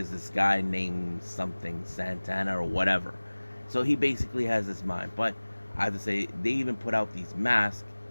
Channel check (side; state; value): both; inverted; correlation -1.00